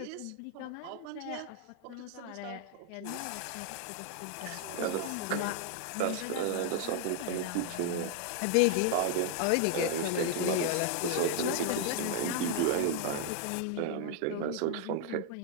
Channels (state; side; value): different; both; correlation 0.00